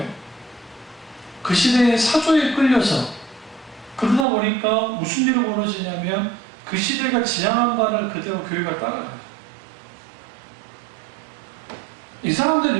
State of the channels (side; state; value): left; drops out; at 4.2 s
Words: 그 시대의 사조에 끌려서 그러다 보니까 무슨 일이 벌어지냐면 그 시대가 지향한 바를 그대로 교회가 따라가요. 이